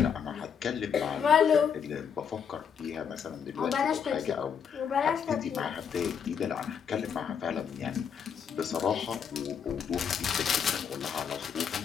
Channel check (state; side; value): quieter; right; 7.3 dB